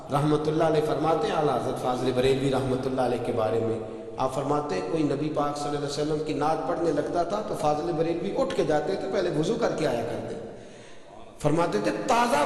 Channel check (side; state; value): both; identical; correlation 1.00